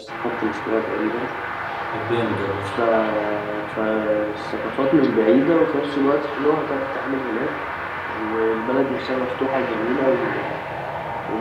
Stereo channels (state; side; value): identical; both; correlation 1.00